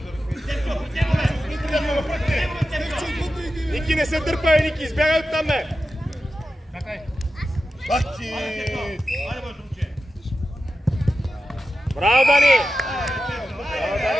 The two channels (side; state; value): both; normal; correlation 0.92